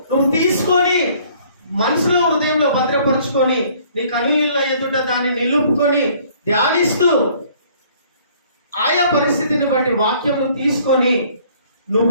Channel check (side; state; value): both; inverted; correlation -0.58